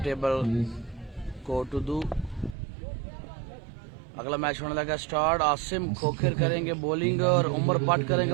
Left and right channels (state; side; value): drops out; left; at 2.6 s